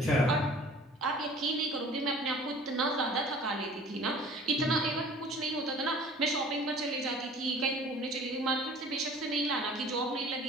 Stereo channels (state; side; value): normal; both; correlation 0.47